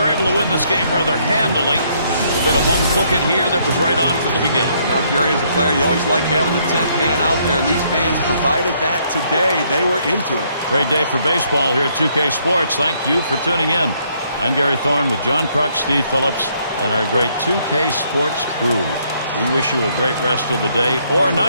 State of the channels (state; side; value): inverted; both; correlation -0.69